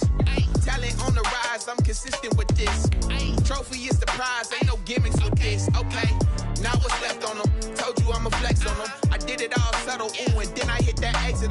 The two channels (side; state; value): both; identical; correlation 1.00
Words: Talent on the rise, I'm consistent with this. Trophy is the prize, ain't no gimmicks with this. Okay, now what's left on them? Told you I'ma flex on them. I did it all subtle, ooh, and then I hit that